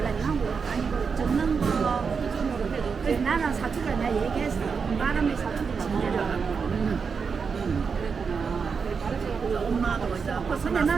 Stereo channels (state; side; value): quieter; left; 5.6 dB